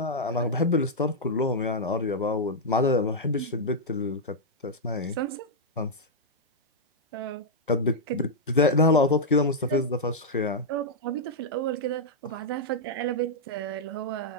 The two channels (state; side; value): normal; both; correlation -0.05